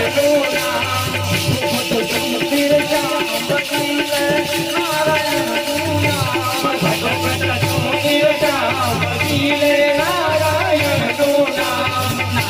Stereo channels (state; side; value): identical; both; correlation 1.00